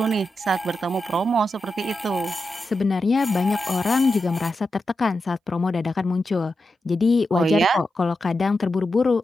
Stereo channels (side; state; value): both; normal; correlation 0.89